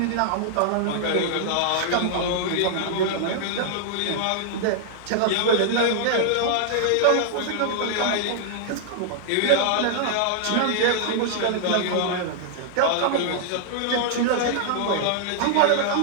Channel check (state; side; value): different; both; correlation -0.01